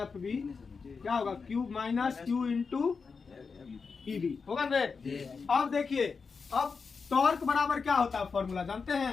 बी, क्या होगा क्यू माइनस क्यू इंटू ई बी होगा ना। अब देखिए, अब टॉर्क बराबर क्या होता है, फॉर्मूला जानते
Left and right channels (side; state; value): right; quieter; 5.1 dB